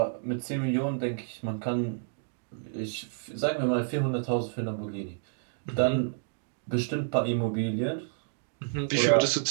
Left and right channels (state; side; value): silent; left; digital silence